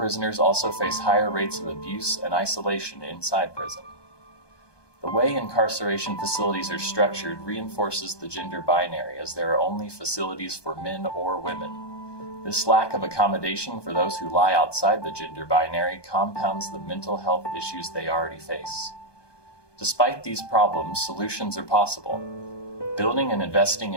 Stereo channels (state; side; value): late; right; 1.2 ms